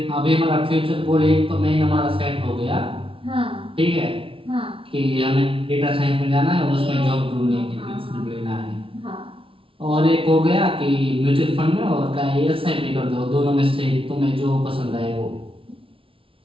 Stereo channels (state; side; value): late; left; 0.26 ms